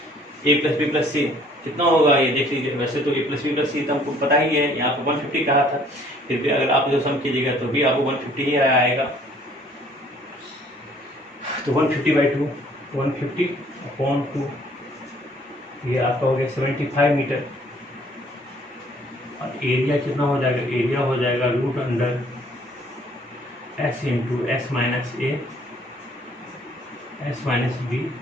a plus b plus c कितना होगा ये देख लीजिए। वैसे तो a plus b plus c तो हमको पता ही है, यहाँ पे 150 कहा था, फिर भी अगर आप जो सम कीजिएगा तो भी आपको 150 ही आएगा। तो 150 बाई 2 150 अपॉन 2, ये आपका हो गया 75 मीटर। और एरिया कितना हो जाएगा? एरिया हो जाएगा root under S into S minus A S minus B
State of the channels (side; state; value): both; normal; correlation 0.58